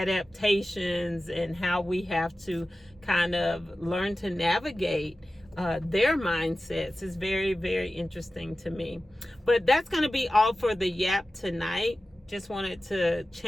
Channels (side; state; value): both; normal; correlation 0.95